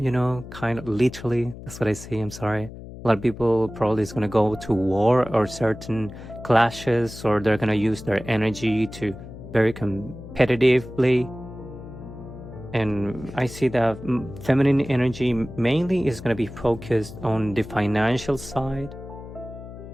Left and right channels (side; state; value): left; noise; hum, 13 dB below the sound